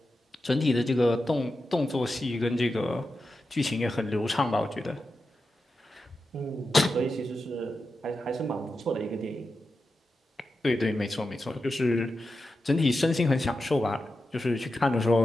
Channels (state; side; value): normal; both; correlation 0.90